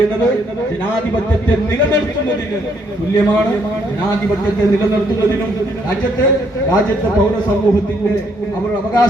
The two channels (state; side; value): normal; both; correlation 0.70